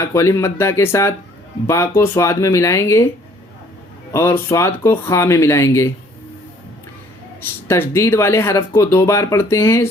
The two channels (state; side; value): normal; both; correlation 0.59